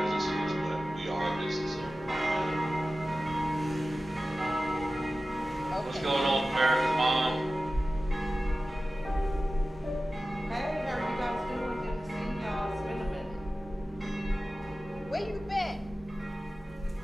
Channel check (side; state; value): both; normal; correlation 0.95